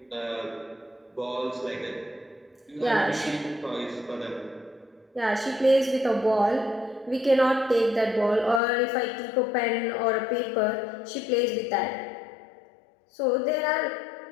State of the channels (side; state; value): right; drops out; at 8.6 s